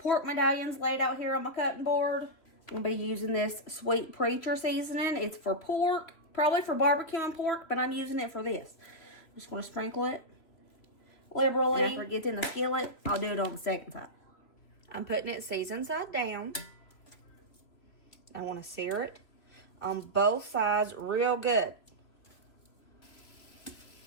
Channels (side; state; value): right; late; 3.0 ms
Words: medallions laid out here on my cutting board. I'm going to be using this Sweet Preacher seasoning. It's for pork, probably for barbecue and pork, but I'm using it for this. I'm just going to sprinkle it liberally. And after it gets in the skillet, I'll do it on the second side. I'm putting it seasoned side down. I want to sear it on both sides real good.